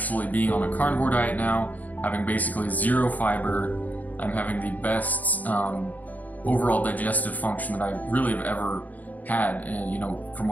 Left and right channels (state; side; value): late; right; 0.079 ms